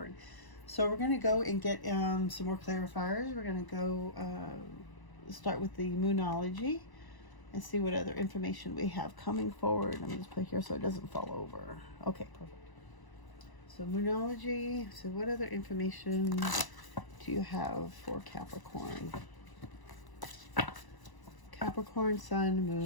So we're going to go and get some more clarifiers. We're going to go start with the Moonology and see what other information we have coming forward. Let me just put here so it doesn't fall over. Okay, perfect. So Moonology. So what other information do you have for Capricorn? Capricorn, Sun,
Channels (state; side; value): late; right; 1.0 ms